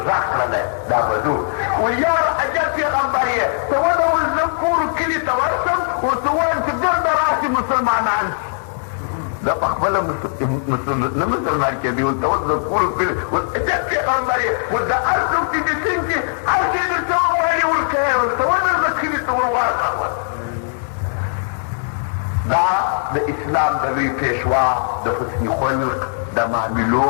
کړلی دا بدو ویل یاره عجب پیغمبر یې ته ودول زه کورو کلي ته ورشم ورته ووایم چې ګرده راشي مسلمانان دا په خپله نه مسلمان کېدي ورته وس زه کورو کلي عجب پیغمبر یې ول د هر څوک چې دې سین چې هر شی درته ووایي ورکوې ورته ونه زه کلي ته ورواړه دا د اسلام د لوی پیشوا د حسن خلق د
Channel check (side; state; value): right; silent; 66 dB below the other